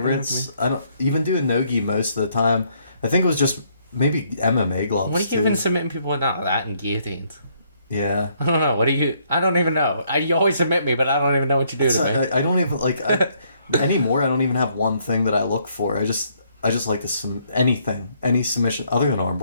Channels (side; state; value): both; inverted; correlation -0.70